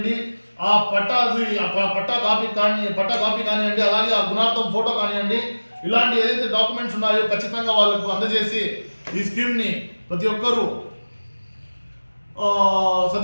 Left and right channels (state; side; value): inverted; both; correlation -1.00